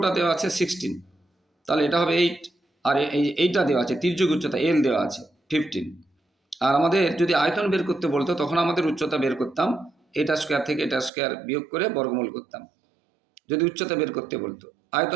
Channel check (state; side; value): drops out; left; at 11.1 s